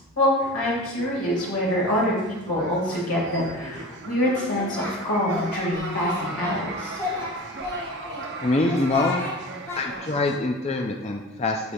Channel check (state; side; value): normal; both; correlation 0.35